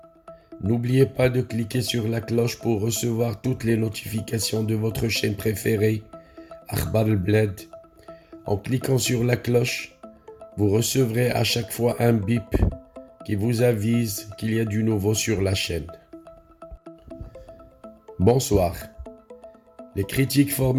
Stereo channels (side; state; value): both; identical; correlation 1.00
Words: n'oubliez pas de cliquer sur la cloche pour recevoir toutes les notifications de votre chaîne préférée, Akhbar al-Bled. En cliquant sur la cloche, vous recevrez à chaque fois un bip qui vous avise qu'il y a du nouveau sur la chaîne. Bonsoir. Les critiques